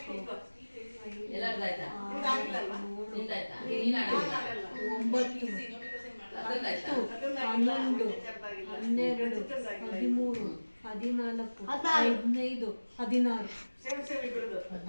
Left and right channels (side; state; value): both; inverted; correlation -1.00